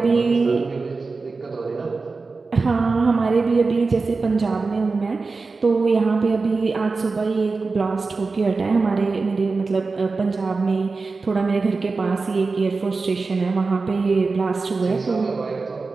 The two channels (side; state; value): left; quieter; 4.1 dB